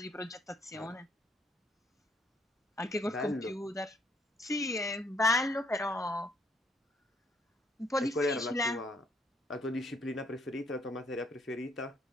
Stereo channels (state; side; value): normal; both; correlation 0.67